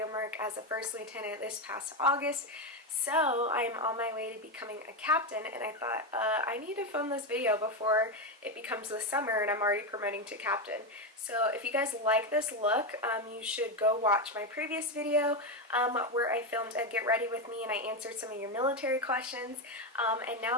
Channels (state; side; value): normal; both; correlation 0.10